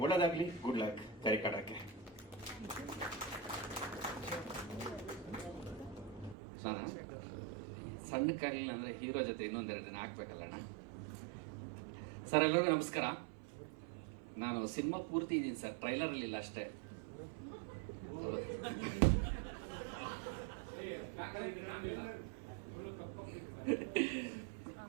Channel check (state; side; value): drops out; left; at 6.4 s